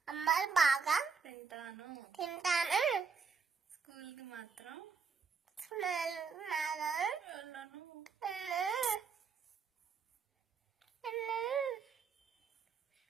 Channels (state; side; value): quieter; left; 5.4 dB